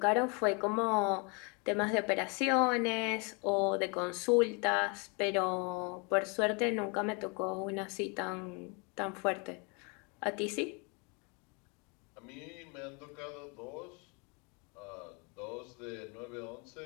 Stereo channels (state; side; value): quieter; right; 32.4 dB